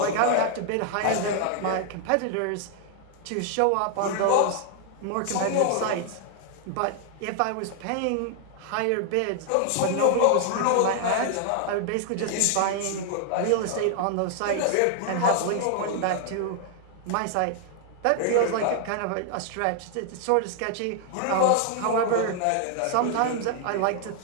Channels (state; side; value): different; both; correlation 0.00